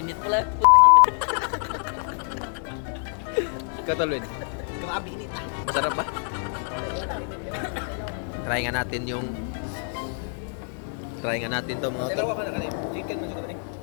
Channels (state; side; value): silent; right; 61 dB below the other